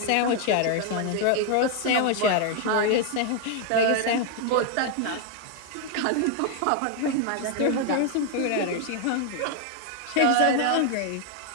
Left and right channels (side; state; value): both; different; correlation 0.01